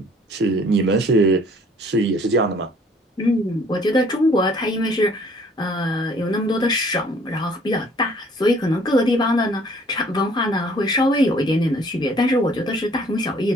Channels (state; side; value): normal; both; correlation 0.57